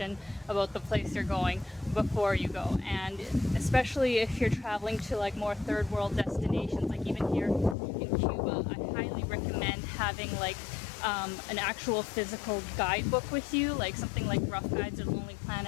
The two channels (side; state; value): right; drops out; at 7.8 s